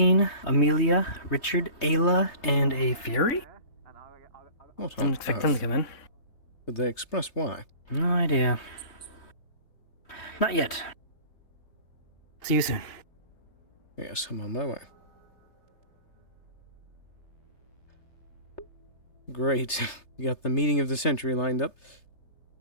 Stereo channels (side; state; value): right; late; 3.3 ms